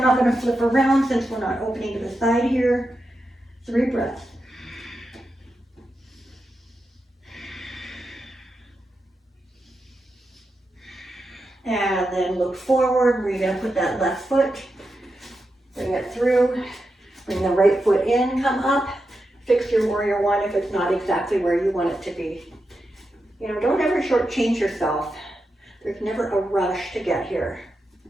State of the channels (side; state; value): both; normal; correlation 0.88